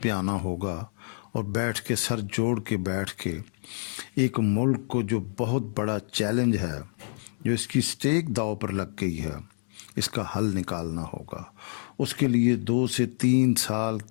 پہ آنا ہوگا اور بیٹھ کے سر جوڑ کے بیٹھ کے ایک ملک کو جو بہت بڑا چیلنج ہے، جو اس کی سٹیک داؤ پر لگ گئی ہے، اس کا حل نکالنا ہوگا۔ اس کے لیے 2 سے 3 سال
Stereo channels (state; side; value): silent; right; digital silence